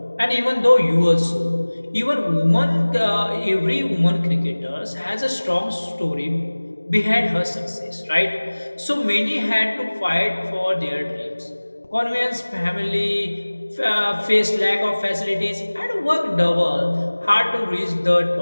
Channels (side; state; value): both; inverted; correlation -1.00